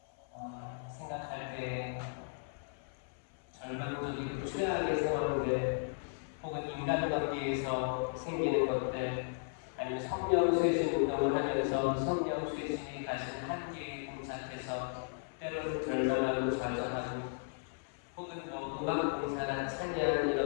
생각할 때 절망적이고 최악의 상황들 혹은 인간관계에서 생기는 것들 아니면 성령쇄신 운동을 하면서 성령쇄신이 가진 한계에 봉착해서 때로는 절망하고 좌절하고 혹은 음악 봉사나 찬양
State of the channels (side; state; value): right; silent; 54 dB below the other